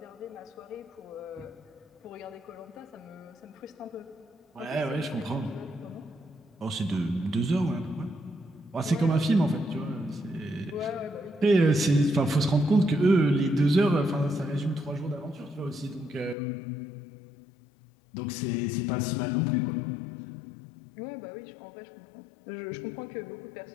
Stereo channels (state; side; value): drops out; right; at 16.4 s